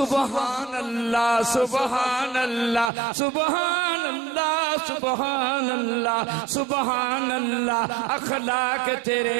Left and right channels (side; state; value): left; drops out; at 2.9 s